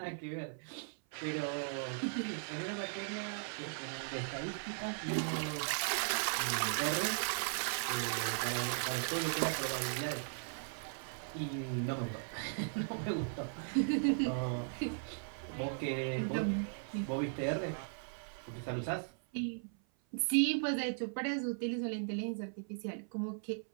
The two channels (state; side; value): silent; left; 53 dB below the other